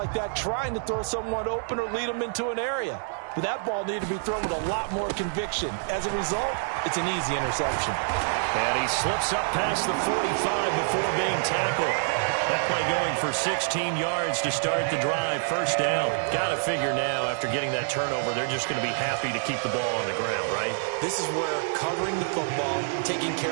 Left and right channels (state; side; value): silent; left; digital silence